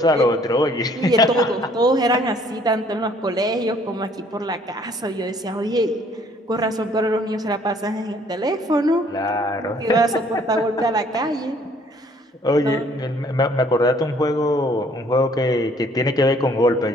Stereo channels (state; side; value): normal; both; correlation 0.60